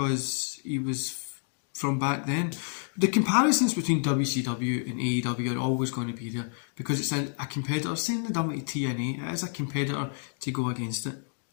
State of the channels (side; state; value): right; silent; 59 dB below the other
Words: he was from back then. The comparisons between WCW and AEW are always going to be there because it's a competitor. Same thing done with TNA, it is a competitor to go against it.